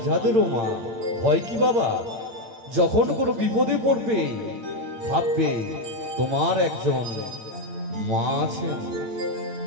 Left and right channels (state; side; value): late; left; 8.8 ms